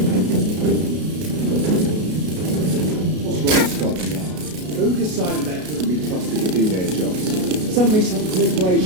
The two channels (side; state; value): left; late; 33 ms